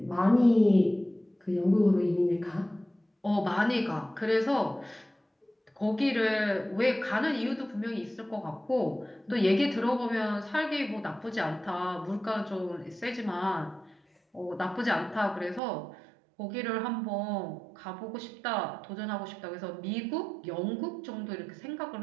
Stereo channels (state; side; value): drops out; left; at 15.6 s